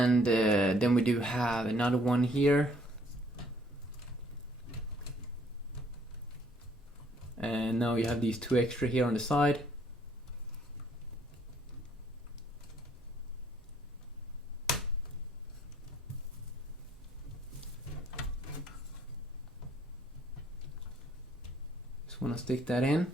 then we do have another one here. And now you have these 2 extra here on the side. Just want to stick that in.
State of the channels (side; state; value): both; normal; correlation 0.63